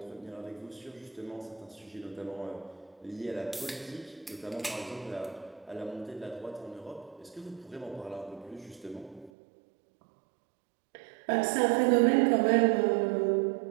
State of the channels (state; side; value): drops out; left; at 9.3 s